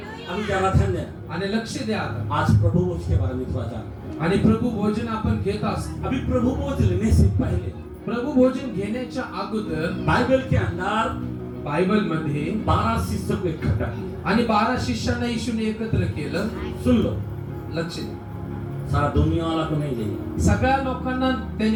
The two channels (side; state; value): both; identical; correlation 1.00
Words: अभी जरा ध्यान देना. आणि लक्ष द्या आता. आज प्रभु भोज के बारे में थोड़ा जान. आणि प्रभू भोजन आपण घेत असतो. अभी प्रभु भोज लेने से पहले प्रभु भोजन घेण्याच्या अगोदर बाइबल के अंदर बायबल मध्ये 12 शिष्यों को इकट्ठा किया. आणि 12 शिष्यांना येशूने एकत्र केलं. सुन लो, लक्ष द्या. सारा दुनिया वाला को नहीं लेगा. सगळ्या लोकांना